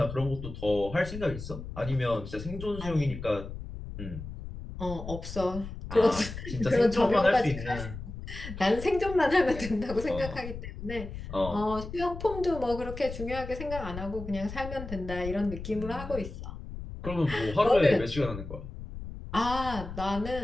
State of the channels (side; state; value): left; noise; rumble, 10 dB below the sound